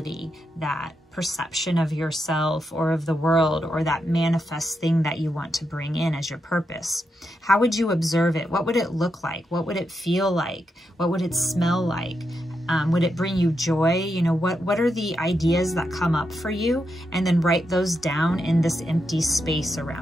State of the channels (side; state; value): both; normal; correlation 0.84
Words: that perception of yourself or of the world, or that manifest thing that you want to bring in as your purpose? How would you observe it? What would it look like? What would it feel like? What would it smell like? Would it bring you joy? You know, what are the ideas that come up for you? And then write those down in this empty space